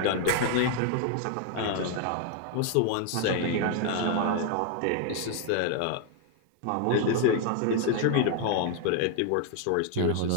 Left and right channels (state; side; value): different; both; correlation 0.00